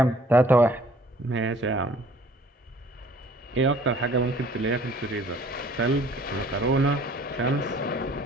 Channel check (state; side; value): normal; both; correlation 0.55